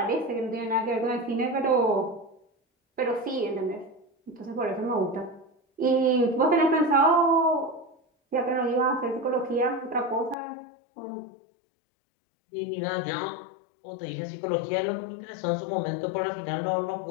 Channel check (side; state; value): right; drops out; at 10.4 s